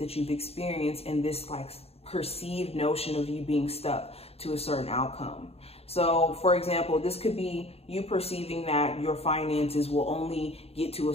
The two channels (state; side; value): late; right; 0.29 ms